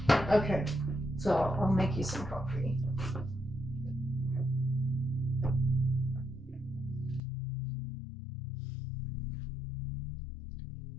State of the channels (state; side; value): drops out; right; at 7.2 s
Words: Okay, so I'll make you some coffee.